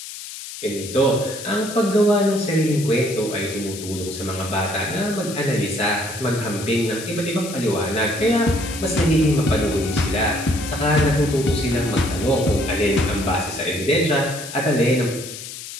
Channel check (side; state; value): left; noise; hiss, 11 dB below the sound